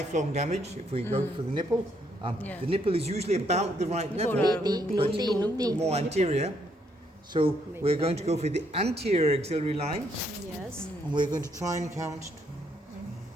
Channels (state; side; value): normal; both; correlation 0.72